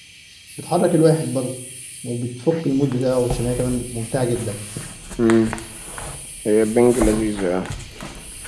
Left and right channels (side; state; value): both; identical; correlation 1.00